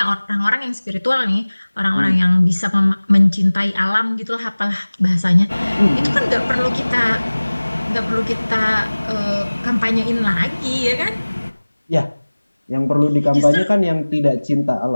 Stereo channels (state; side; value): inverted; both; correlation -1.00